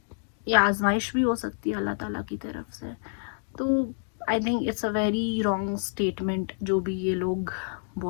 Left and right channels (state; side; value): silent; right; digital silence